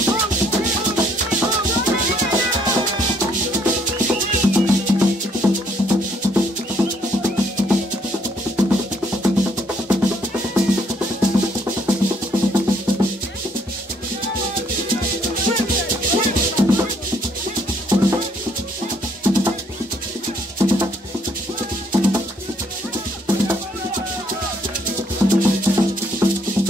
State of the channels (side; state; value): both; normal; correlation 0.67